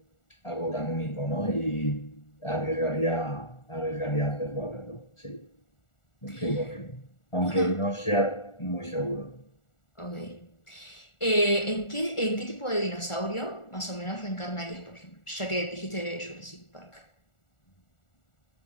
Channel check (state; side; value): late; right; 1.4 ms